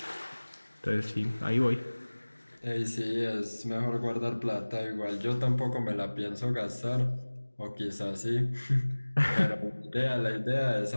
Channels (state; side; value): inverted; both; correlation -1.00